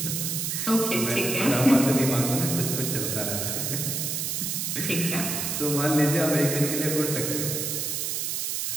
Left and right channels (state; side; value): noise; right; hiss, 1 dB below the sound